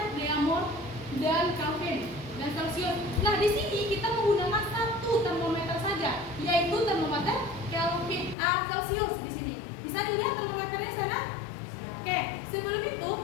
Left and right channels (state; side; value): drops out; right; at 8.3 s